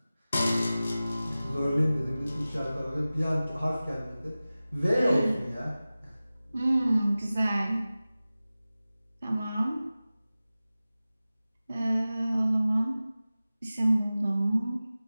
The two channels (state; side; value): inverted; both; correlation -0.96